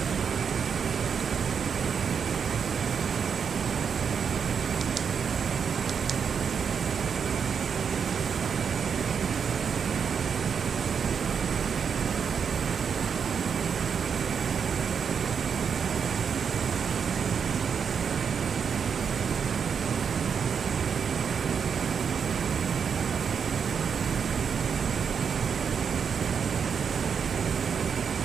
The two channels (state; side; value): quieter; left; 6.7 dB